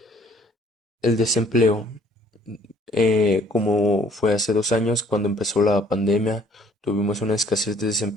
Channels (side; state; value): both; normal; correlation 0.59